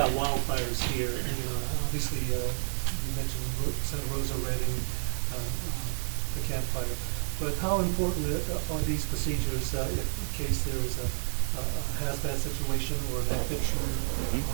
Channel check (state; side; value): silent; left; digital silence